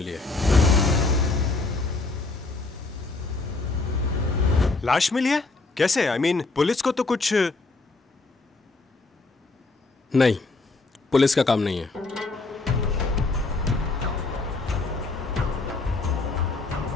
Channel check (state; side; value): quieter; right; 3.5 dB